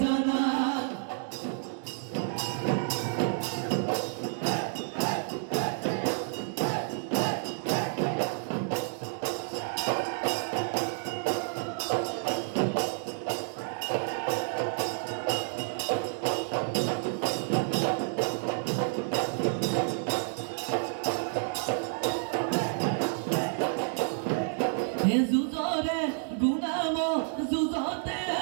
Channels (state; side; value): silent; left; digital silence